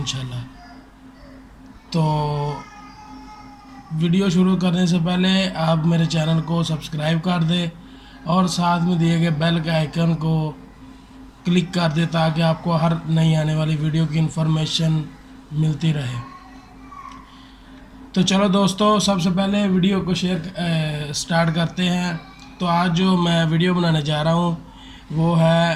तो वीडियो शुरू करने से पहले आप मेरे चैनल को सब्सक्राइब कर दें और साथ में दिए गए बेल के आइकन को क्लिक कर दें ताकि आपको हर नई आने वाली वीडियो की इन्फॉर्मेशन मिलती रहे। तो चलो दोस्तों, सबसे पहले वीडियो को स्टार्ट करते हैं। तो आज जो मैं वीडियो बनाने जा रहा हूँ वो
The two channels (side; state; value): both; identical; correlation 1.00